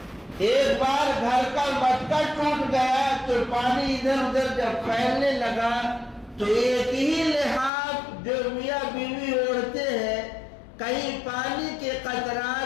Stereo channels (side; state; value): right; drops out; at 7.7 s